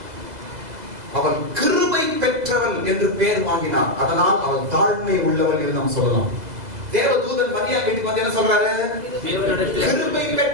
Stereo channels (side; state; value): left; late; 2.0 ms